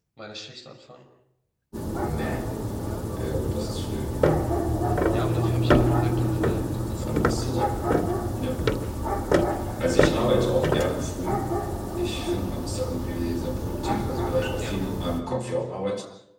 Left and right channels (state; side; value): identical; both; correlation 1.00